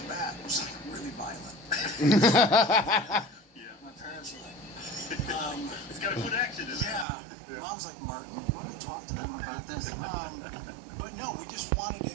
bat was really violent. My parents were like, it's got a good action. Mom's like, Martin, you want to talk to them about this? But no, we just wanted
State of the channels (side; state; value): left; drops out; at 7.1 s